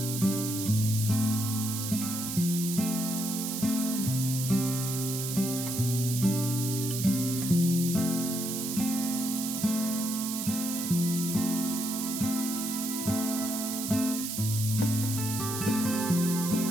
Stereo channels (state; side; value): noise; right; hiss, 4 dB below the sound